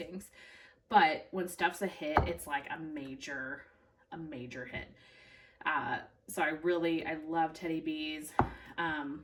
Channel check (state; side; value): identical; both; correlation 1.00